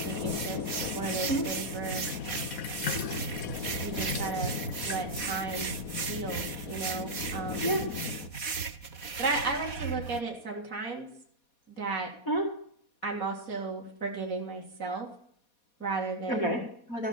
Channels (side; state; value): right; late; 4.2 ms